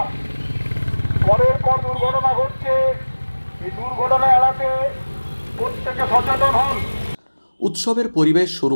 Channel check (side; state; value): both; inverted; correlation -1.00